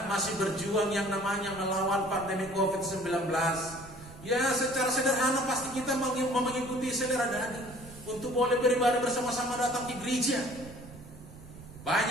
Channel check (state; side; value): noise; right; rumble, 17 dB below the sound